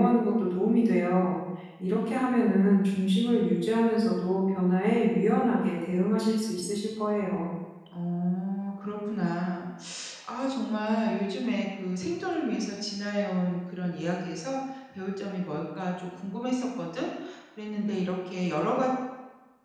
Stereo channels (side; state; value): both; identical; correlation 1.00